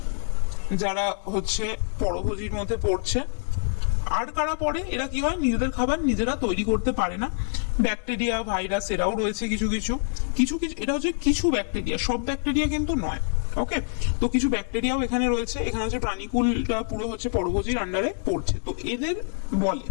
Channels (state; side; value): silent; right; 61 dB below the other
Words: যারা হচ্ছে পরভোজীর মধ্যে পড়ছে। আর কারা পড়ে? এরা কি হয়, নিজেদের খাবার নিজেরা তৈরি করতে পারে না। ব্যাকটেরিয়া, ভাইরাস এরাও রয়েছে কিছু কিছু কিছু কিছু এটা হচ্ছে কিছু ব্যাকটেরিয়া, সব ব্যাকটেরিয়া কিন্তু নয়। ওকে, তো কিছু ব্যাকটেরিয়াও এখানে রয়েছে। এখানে হচ্ছে প্রাণীকুলটা পুরো হচ্ছে পরভোজীর আন্ডারে পড়ছে, তো এদের বলে।